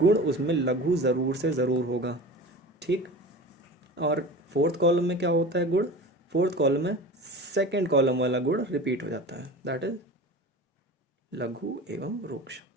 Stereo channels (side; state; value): both; normal; correlation 0.35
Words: उसमें लघु ज़रूर से ज़रूर होगा, ठीक। और फोर्थ कॉलम में क्या होता है गुण, फोर्थ कॉलम में सेकंड कॉलम वाला गुण रिपीट हो जाता है, दैट इज लघु एवं रूक्ष।